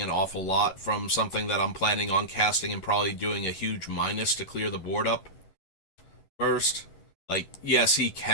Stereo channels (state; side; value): late; right; 11 ms